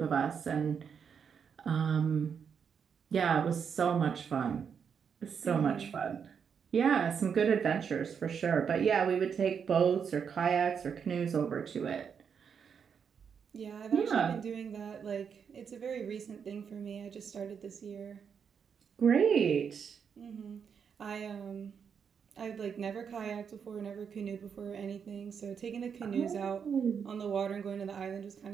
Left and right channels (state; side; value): quieter; left; 6.9 dB